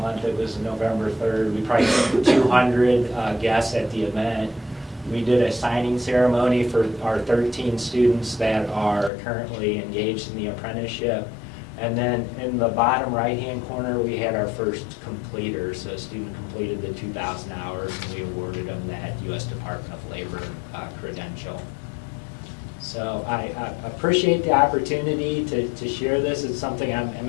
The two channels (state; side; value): drops out; right; at 9.1 s